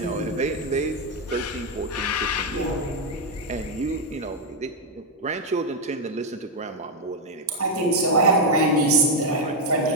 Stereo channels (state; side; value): normal; both; correlation 0.02